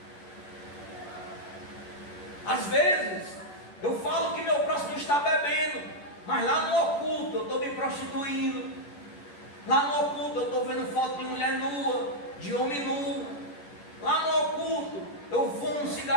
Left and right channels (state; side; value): late; right; 11 ms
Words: Às vezes eu falo que meu próximo está bebendo, mas lá no oculto eu estou me prostituindo. Lá no oculto eu estou vendo foto de mulher nua, de homem nu. Lá no oculto eu fumo um